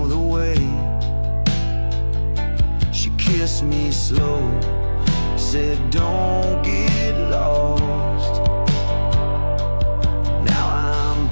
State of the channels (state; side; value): inverted; both; correlation -1.00